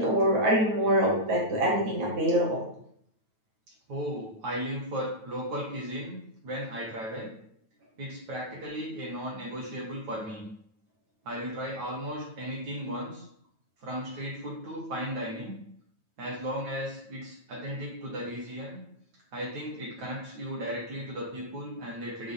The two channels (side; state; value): left; late; 9.1 ms